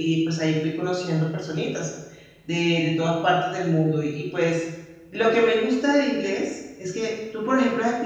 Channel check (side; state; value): both; identical; correlation 1.00